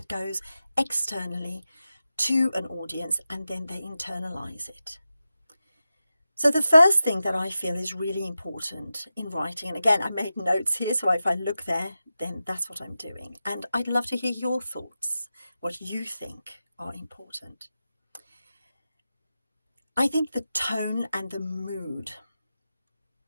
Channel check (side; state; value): both; inverted; correlation -0.92